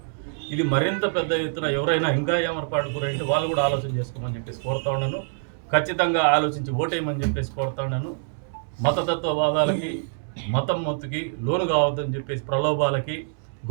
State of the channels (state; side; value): silent; left; digital silence